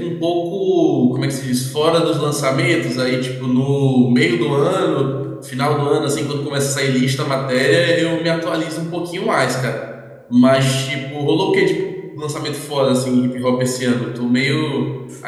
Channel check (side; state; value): both; identical; correlation 1.00